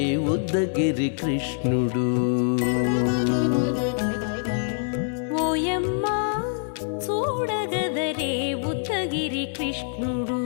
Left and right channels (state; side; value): silent; right; digital silence